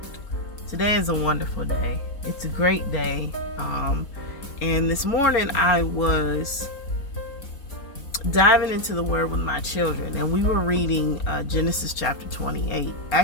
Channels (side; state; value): right; late; 4.3 ms